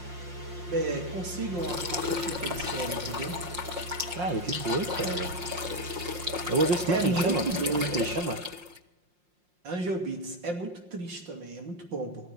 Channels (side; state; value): left; late; 5.6 ms